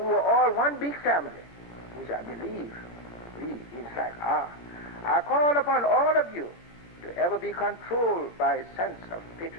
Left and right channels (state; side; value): late; right; 17 ms